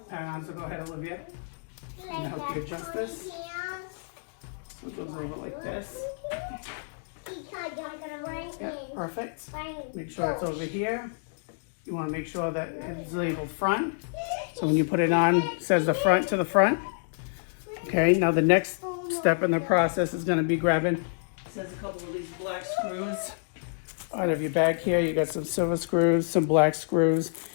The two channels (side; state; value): right; silent; digital silence